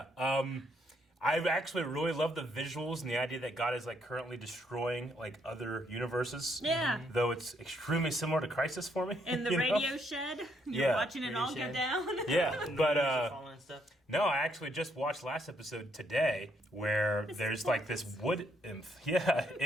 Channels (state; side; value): normal; both; correlation 0.72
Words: I actually really love the visuals and the idea that God is like currently destroying like other universes. Yeah. Though it's extremely similar to Crisis for me. In the you know? radio shed. You're Yeah. watching it Radio all shed. go down. Yeah, but Falling and stuff. no, I actually just watched last episode today where there's like this wood nymph,